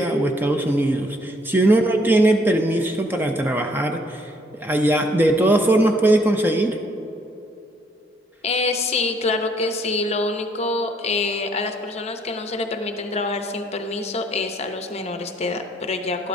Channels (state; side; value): normal; both; correlation 0.66